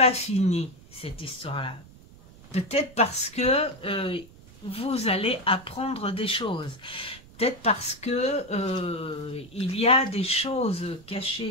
fini, cette histoire-là, peut-être parce que vous allez apprendre des choses. Peut-être parce que il y a des choses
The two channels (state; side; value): noise; right; rumble, 22 dB below the sound